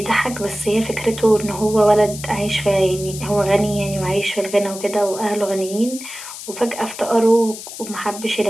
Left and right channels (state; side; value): noise; left; hiss, 12 dB below the sound